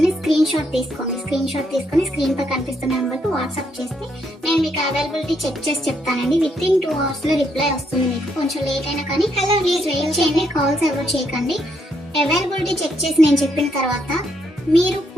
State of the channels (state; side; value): normal; both; correlation 0.75